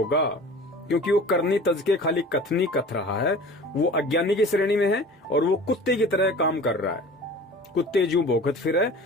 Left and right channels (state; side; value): normal; both; correlation 0.41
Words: क्योंकि वो करनी तज के खाली कथनी कथ रहा है, वो अज्ञानी की श्रेणी में है और वो कुत्ते की तरह काम कर रहा है। कुत्ते ज्यों भौंकत फिरे,